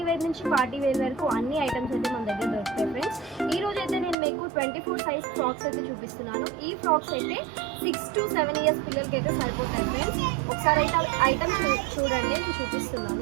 వేర్ నుంచి పార్టీ వేర్ వరకు అన్ని ఐటమ్స్ అయితే మన దగ్గర దొరుకుతాయి ఫ్రెండ్స్. ఈ రోజు అయితే నేను మీకు 24 సైజ్ ఫ్రాక్స్ అయితే చూపిస్తున్నాను. ఈ ఫ్రాక్స్ అయితే 6 to 7 ఇయర్స్ పిల్లలకి అయితే సరిపోతాయి ఫ్రెండ్స్. ఒకసారి అయితే ఐటమ్స్ చూడండి, నేను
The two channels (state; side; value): drops out; left; at 4.2 s